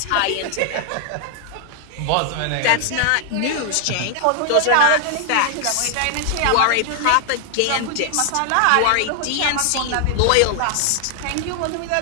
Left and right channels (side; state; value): both; different; correlation 0.00